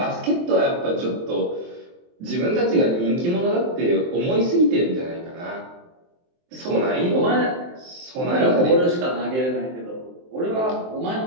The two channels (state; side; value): late; left; 23 ms